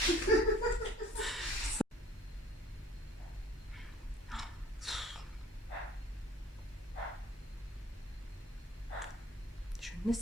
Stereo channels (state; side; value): normal; both; correlation 0.52